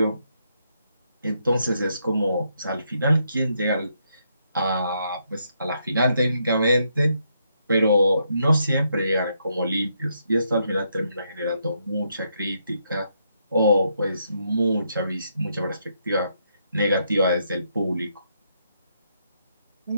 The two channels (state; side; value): inverted; both; correlation -0.77